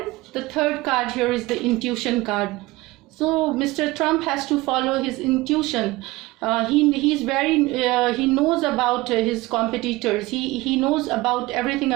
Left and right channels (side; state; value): left; quieter; 20.3 dB